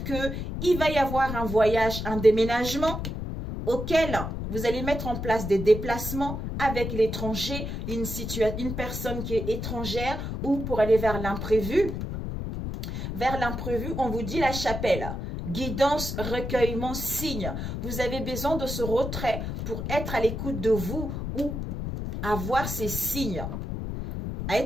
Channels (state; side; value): noise; left; rumble, 5 dB below the sound